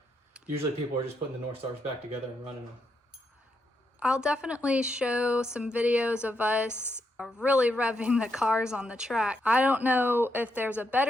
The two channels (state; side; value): normal; both; correlation 0.81